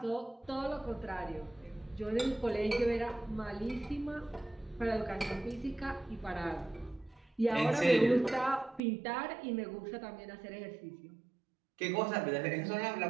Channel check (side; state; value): left; drops out; at 8.8 s